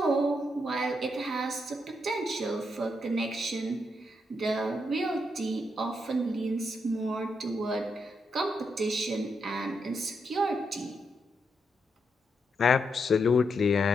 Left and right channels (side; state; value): both; normal; correlation 0.81